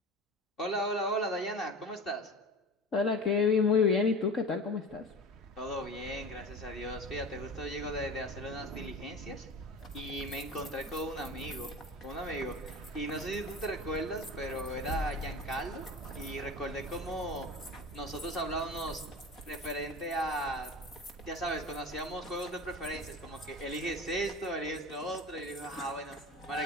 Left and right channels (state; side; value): normal; both; correlation 0.33